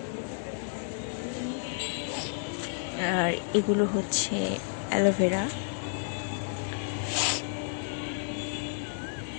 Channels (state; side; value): silent; right; digital silence